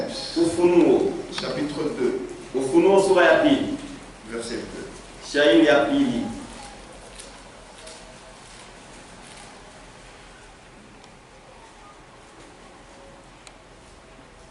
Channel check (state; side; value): identical; both; correlation 1.00